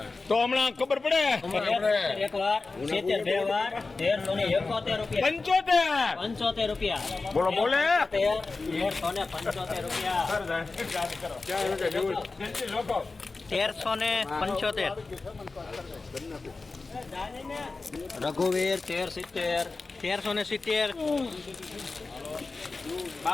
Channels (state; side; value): quieter; right; 3.8 dB